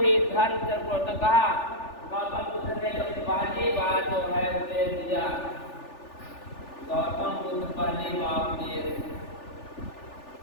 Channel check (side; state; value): right; late; 3.4 ms